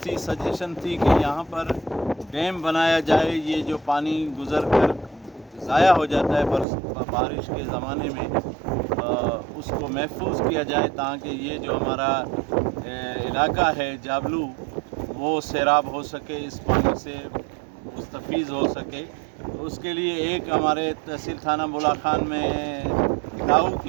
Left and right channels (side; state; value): left; drops out; at 6.7 s